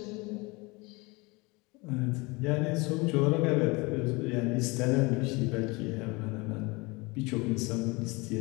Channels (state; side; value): quieter; right; 25.6 dB